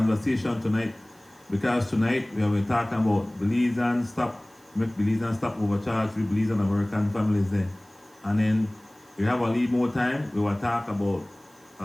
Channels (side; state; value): right; noise; hiss, 30 dB below the sound